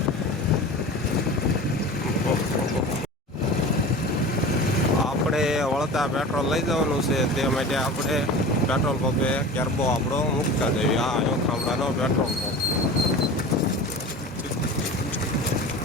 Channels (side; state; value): both; normal; correlation 0.35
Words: આપણે વળતા પેટ્રોલ લઈ જવાનું છે, તે માટે આપણે પેટ્રોલ પંપે કેરબો આપણો મૂકતા જઈએ. આ ખાંભડાનો પેટ્રોલ પંપ.